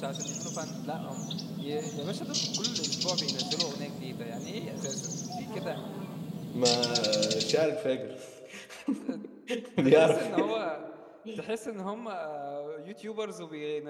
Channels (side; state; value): both; identical; correlation 1.00